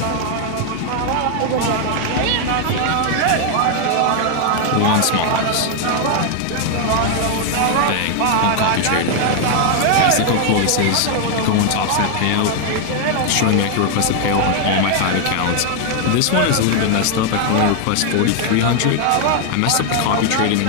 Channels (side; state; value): both; different; correlation 0.00